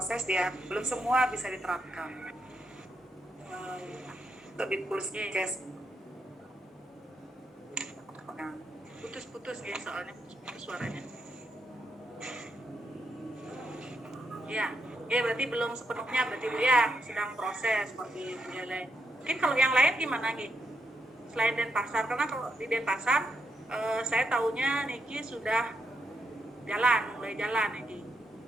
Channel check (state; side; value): normal; both; correlation 0.80